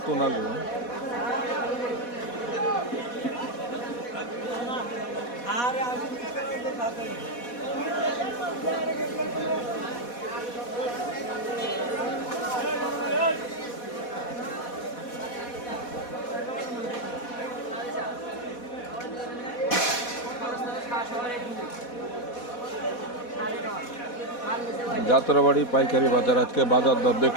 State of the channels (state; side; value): late; right; 4.1 ms